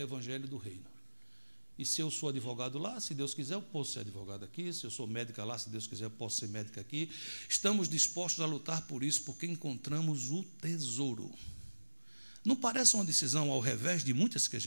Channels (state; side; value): inverted; both; correlation -1.00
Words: o evangelho do reino. E se eu sou advogado lá, se Deus quiser, eu posso ser advogado aqui. Se eu sou médica lá, se Deus quiser, eu posso ser médica aqui. Estamos dispostos a lutar por isso, porque encontramos o tesouro. Não parece uma decisão ao revés de muitas que a